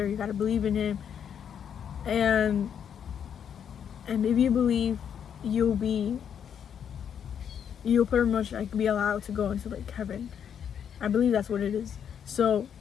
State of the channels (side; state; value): right; quieter; 8.3 dB